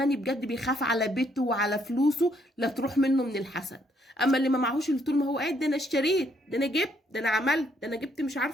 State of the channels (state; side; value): normal; both; correlation 0.70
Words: بجد بيخاف على بيته وعلى فلوسه لا تروح منه من الحسد. اما اللي ما معهوش، اللي طول ما هو قاعد ده انا اشتريت، ده انا جبت، ده انا عملت، ده انا جبت مش